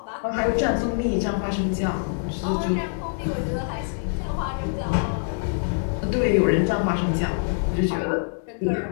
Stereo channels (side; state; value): right; silent; digital silence